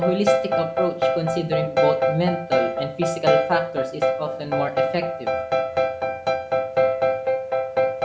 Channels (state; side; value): identical; both; correlation 1.00